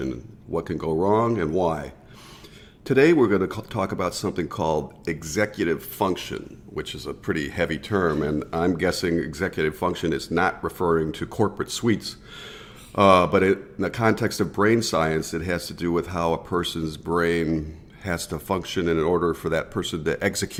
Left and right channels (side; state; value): both; identical; correlation 1.00